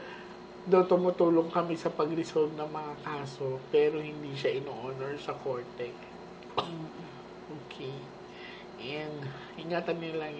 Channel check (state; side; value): identical; both; correlation 1.00